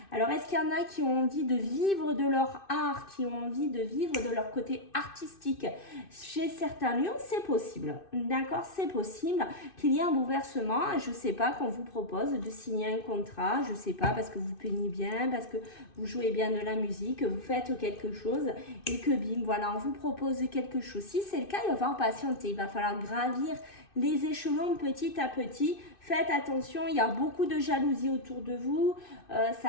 Alors, est-ce qu'il y en a qui ont envie de vivre de leur art, qui ont envie de vivre de leur côté artistique? Chez certains lions, c'est possible. D'accord, c'est possible qu'il y ait un bouleversement. Je ne sais pas, qu'on vous propose de signer un contrat. Je ne sais pas, parce que vous peignez bien, parce que vous jouez bien de la musique, vous faites quelque chose et que bim, voilà, on vous propose quelque chose. Si c'est le cas, il va falloir patienter. Il va falloir gravir les échelons petit à petit. Faites attention, il y a beaucoup de jalousie autour de vous.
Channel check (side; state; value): right; late; 2.6 ms